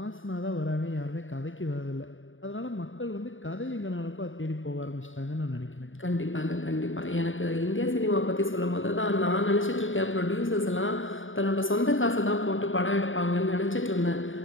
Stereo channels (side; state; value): right; late; 0.57 ms